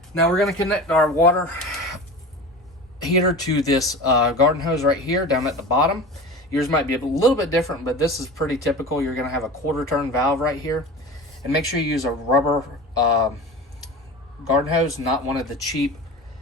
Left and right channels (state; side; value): normal; both; correlation 0.33